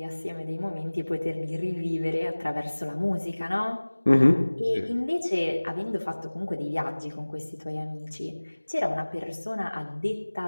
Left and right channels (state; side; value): inverted; both; correlation -1.00